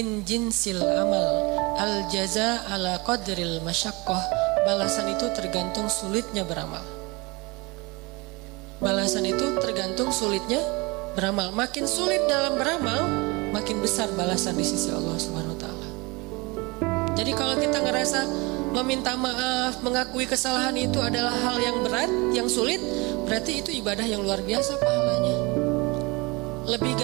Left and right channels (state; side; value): quieter; left; 25.7 dB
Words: jinsil amal, al jaza ala qadril masyaqqah. Balasan itu tergantung sulitnya beramal. Balasan itu tergantung sulitnya beramal. Makin sulit dalam beramal, makin besar balasan di sisi Allah Subhanahu wa taala. Jadi kalau kita ngerasa meminta maaf, mengakui kesalahan itu adalah hal yang berat, yang sulit, berarti itu ibadah yang luar biasa pahalanya. Lebih